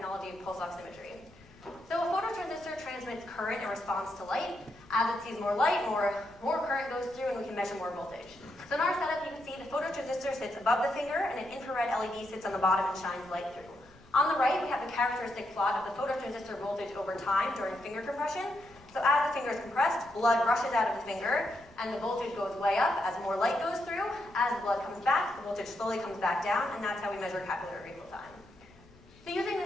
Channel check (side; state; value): left; noise; rumble, 26 dB below the sound